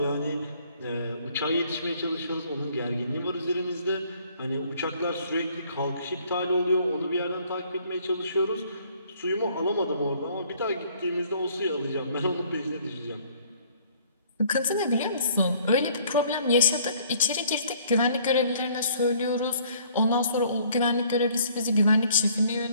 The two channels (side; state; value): both; inverted; correlation -0.59